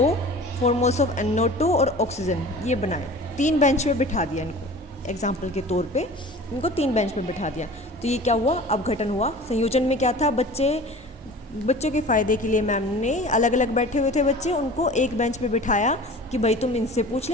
4 मोल्स ऑफ NO2 और ऑक्सीजन, ये बनाए, 3 बेंच पे बिठा दिया इनको। एग्जाम्पल के तौर पे इनको 3 बेंच पे बिठा दिया। तो ये क्या हुआ, अपघटन हुआ। संयोजन में क्या था, बच्चों के फ़ायदे के लिए मैम ने अलग अलग बैठे हुए थे बच्चे, उनको एक बेंच पे बिठाया कि भाई तुम इनसे पूछ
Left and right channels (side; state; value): both; normal; correlation 0.40